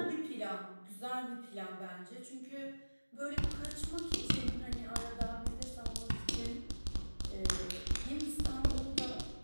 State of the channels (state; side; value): inverted; both; correlation -1.00